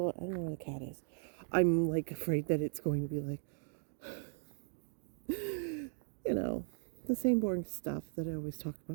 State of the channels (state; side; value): silent; left; digital silence